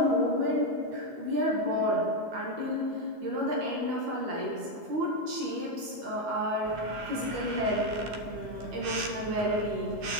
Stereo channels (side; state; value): left; late; 13 ms